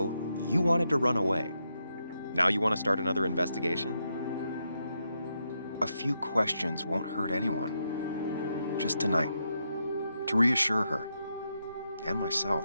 you wanted to run away. Now you want to start another investigation? A few questions won't hurt anyone. Just tonight. To reassure her. And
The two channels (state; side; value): inverted; both; correlation -0.82